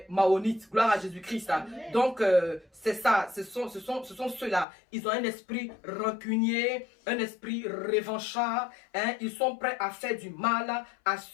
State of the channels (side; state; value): right; drops out; at 4.7 s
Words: Maonites. Gloire à Jésus-Christ. Donc, c'est ça. Ce sont ceux-là. Ils ont un esprit rancunier, un esprit revanchard. Hein. Ils sont prêts à faire du mal à